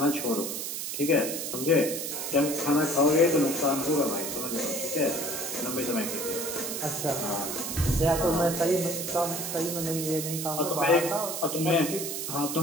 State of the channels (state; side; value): noise; right; hiss, 4 dB below the sound